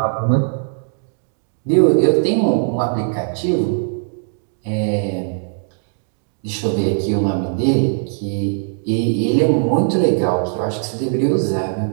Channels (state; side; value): silent; left; digital silence